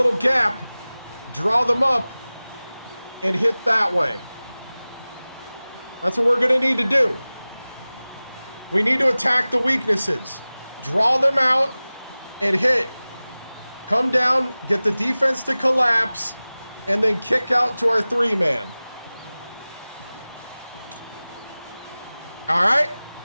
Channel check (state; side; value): inverted; both; correlation -0.98